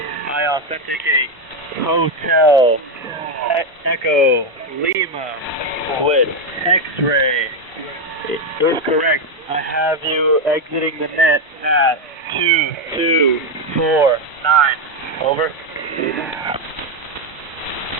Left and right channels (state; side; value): normal; both; correlation 0.06